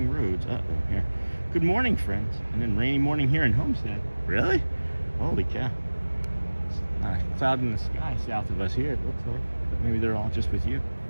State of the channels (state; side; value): inverted; both; correlation -1.00